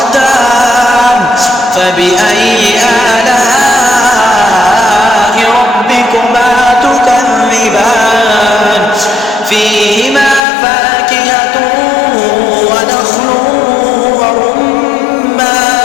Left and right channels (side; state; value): right; drops out; at 10.4 s